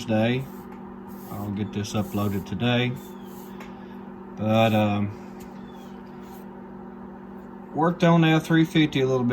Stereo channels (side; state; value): both; identical; correlation 1.00